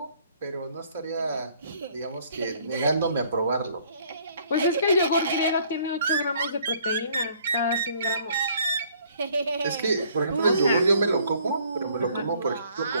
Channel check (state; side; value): inverted; both; correlation -0.61